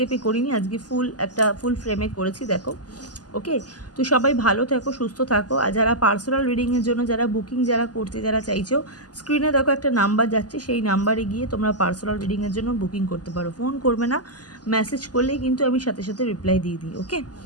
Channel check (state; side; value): late; right; 0.68 ms